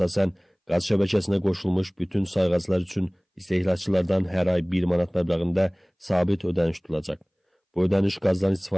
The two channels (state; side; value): identical; both; correlation 1.00